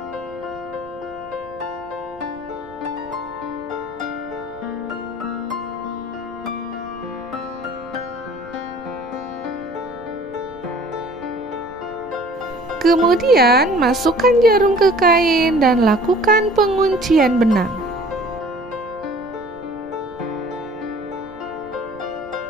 Kemudian, masukkan jarum ke kain dan lakukan penguncian benang.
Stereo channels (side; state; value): right; noise; rumble, 24 dB below the sound